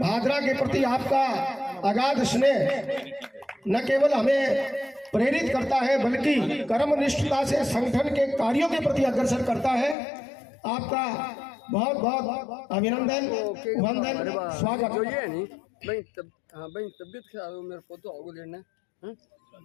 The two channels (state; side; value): drops out; right; at 10.0 s